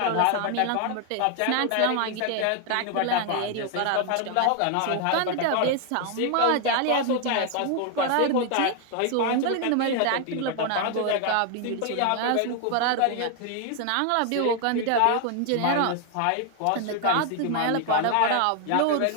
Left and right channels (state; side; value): different; both; correlation 0.00